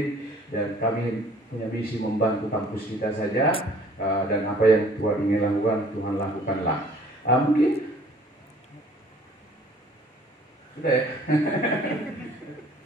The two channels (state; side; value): normal; both; correlation 0.54